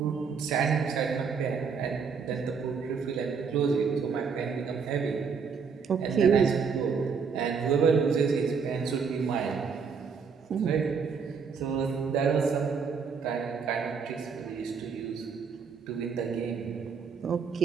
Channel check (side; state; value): left; quieter; 5.9 dB